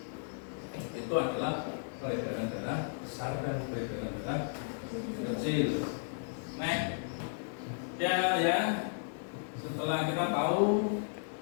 itu adalah peredaran darah besar dan peredaran darah kecil. Nah, ya, setelah kita tahu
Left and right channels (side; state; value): right; silent; digital silence